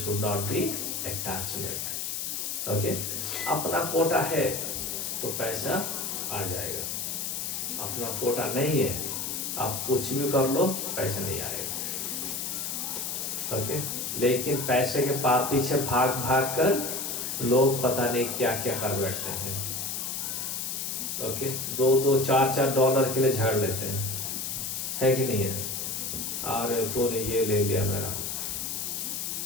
not be attachment. Okay, अपना quota है तो पैसा आ जाएगा, अपना कोटा नहीं है आप कुछ भी कर लो पैसा नहीं आएगा. ओके, लेकिन पैसे के पीछे भाग भाग कर लोग पता नहीं क्या क्या कर बैठते हैं. ओके, 2-2, 4-4 डॉलर के लिए झगड़ लेते हैं, है कि नहीं है? अरे तूने ये ले लिया मेरा,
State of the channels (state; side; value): noise; left; hiss, 3 dB below the sound